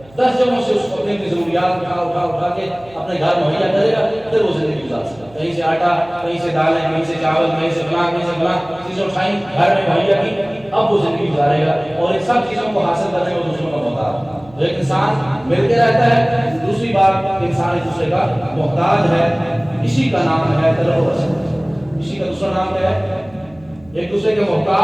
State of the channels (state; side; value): noise; right; hum, 25 dB below the sound